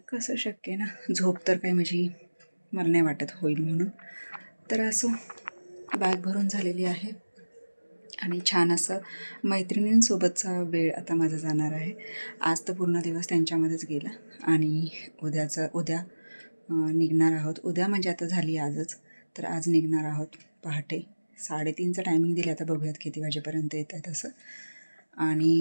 कसं शक्य आहे ना, झोप तर काही माझी मला नाही वाटत होईल म्हणून. तर असो, बॅग भरून झालेली आहे आणि छान असं मैत्रिणींसोबतचा वेळ आता माझा जाणार आहे. आज तर पूर्ण दिवस त्यांच्यामध्येच गेला आणि उद्या निघणार आहोत. उद्या म्हणजे आता झाली आजच, तर आज निघणार आहोत पहाटे 3:30चं टायमिंग दिलं. आता बघूयात किती वाजेपर्यंत येत आहे तसं.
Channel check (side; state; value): both; inverted; correlation -1.00